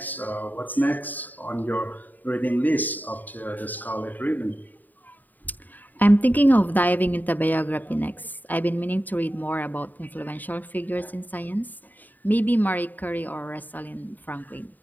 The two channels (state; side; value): late; right; 0.086 ms